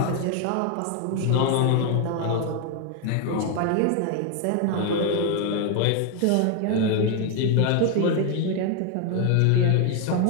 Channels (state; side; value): different; both; correlation 0.01